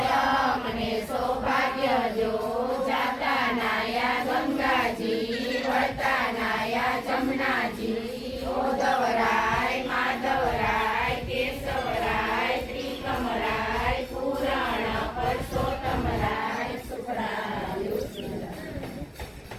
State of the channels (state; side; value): identical; both; correlation 1.00